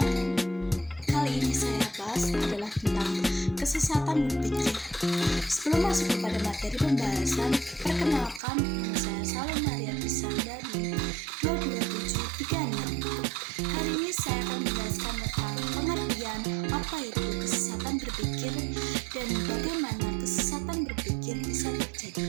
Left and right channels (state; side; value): drops out; left; at 8.4 s